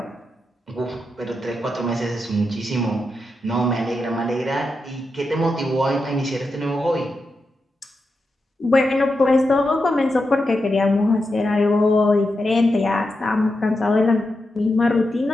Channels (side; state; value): both; normal; correlation 0.87